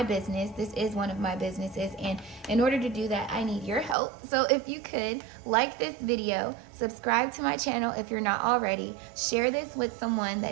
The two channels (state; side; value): drops out; left; at 4.0 s